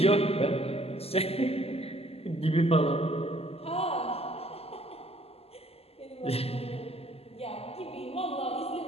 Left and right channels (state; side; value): late; right; 0.29 ms